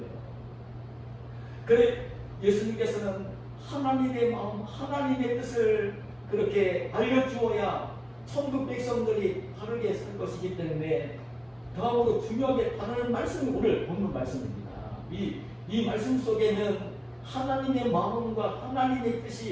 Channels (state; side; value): identical; both; correlation 1.00